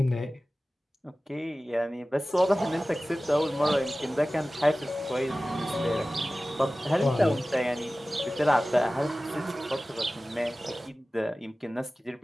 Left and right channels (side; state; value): both; normal; correlation 0.97